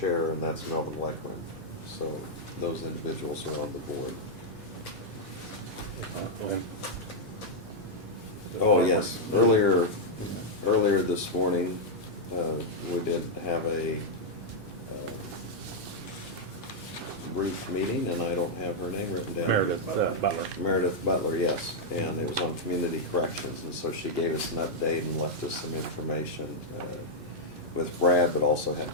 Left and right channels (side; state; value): both; normal; correlation -0.04